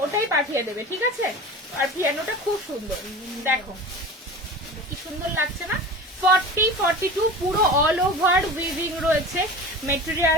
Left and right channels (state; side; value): normal; both; correlation 0.34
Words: ওটাই পাঠিয়ে দেবে, ঠিক আছে? আর পিয়ানোটা খুব সুন্দর, দেখো কি সুন্দর লাগছে না? 40-42 পুরো অল ওভার উইভিং রয়েছে।